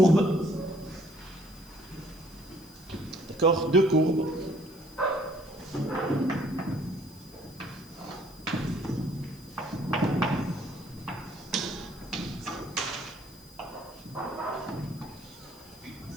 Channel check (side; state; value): right; noise; hiss, 24 dB below the sound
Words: d'accord, deux courbes.